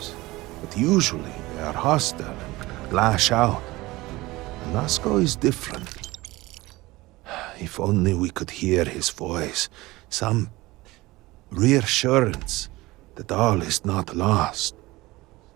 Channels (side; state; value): left; quieter; 20.0 dB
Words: But usually they are hostile and lash out. Anasko is different. If only we could hear his voice, some reassurance that all is not lost.